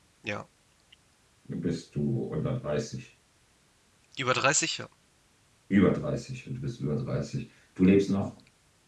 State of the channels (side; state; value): both; identical; correlation 1.00